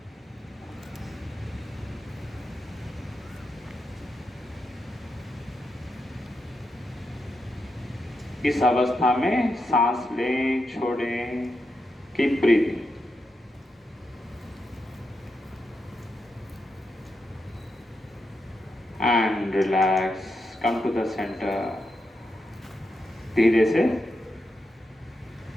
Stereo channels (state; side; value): normal; both; correlation 0.86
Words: इस अवस्था में सांस लें, छोड़ें, keep breathing. And relax, come to the centre. धीरे से